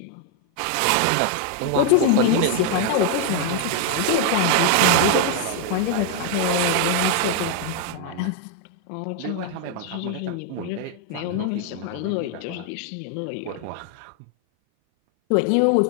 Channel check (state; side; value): different; both; correlation 0.00